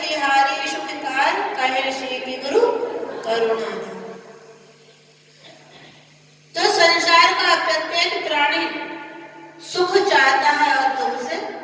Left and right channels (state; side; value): identical; both; correlation 1.00